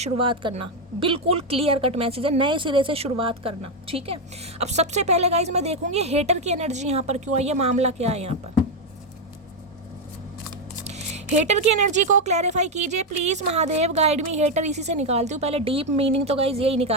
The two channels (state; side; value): normal; both; correlation 0.05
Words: करना, बिल्कुल क्लियर कट मैसेज है, नए सिरे से शुरुआत करना। ठीक है, अब सबसे पहले गाइस मैं देखूंगी हेटर की एनर्जी यहाँ पर क्यों आई है, मामला क्या है यहाँ पर। हेटर की एनर्जी को क्लैरिफाई कीजिए please Mahadev, guide me. Hater इसी से निकालती हूँ पहले, डीप मीनिंग तो गाइस यही